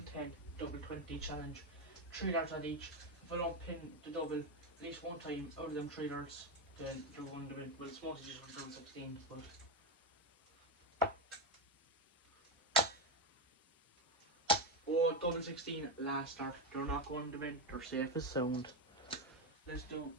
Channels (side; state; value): both; normal; correlation 0.10